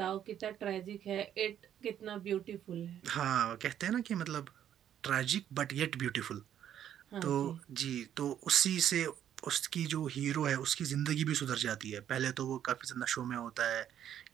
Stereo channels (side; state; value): left; quieter; 10.2 dB